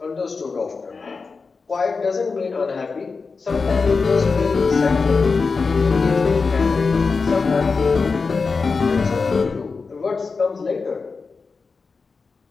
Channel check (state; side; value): quieter; right; 4.6 dB